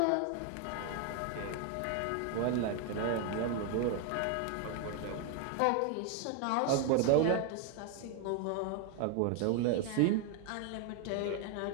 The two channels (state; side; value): different; both; correlation 0.01